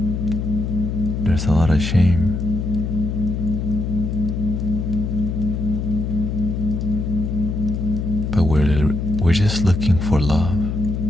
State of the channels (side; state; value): left; noise; hum, 2 dB below the sound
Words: there's a lot of shame. But we're just looking for love